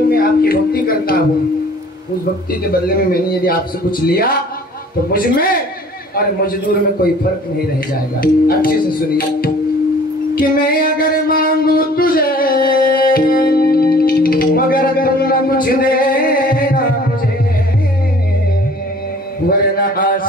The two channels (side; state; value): both; normal; correlation 0.51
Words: मैं आपकी भक्ति करता हूँ, उस भक्ति के बदले में मैंने यदि आपसे कुछ लिया तो मुझ में और मजदूर में कोई फर्क नहीं रह जाएगा. अच्छे से सुनिए कि मैं अगर मांगू तुझे, मगर अगर ना कुछ देना मुझे, वरना